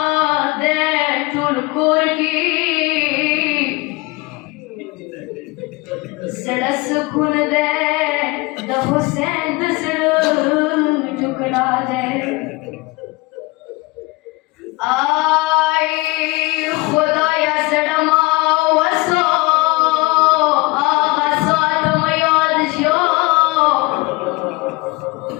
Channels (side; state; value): right; quieter; 23.8 dB